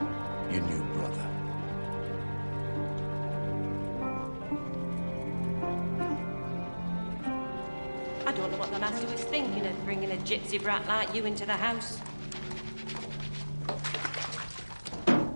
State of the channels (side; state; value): both; inverted; correlation -1.00